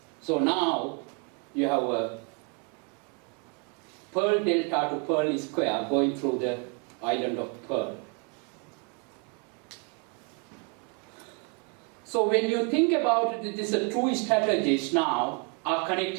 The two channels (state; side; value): quieter; left; 35.5 dB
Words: So now you have a Pearl Delta to Pearl Square going through the Island of Pearl. So when you think about it, these two strategies now are